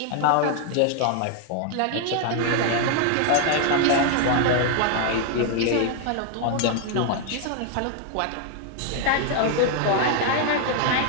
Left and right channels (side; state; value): both; different; correlation 0.00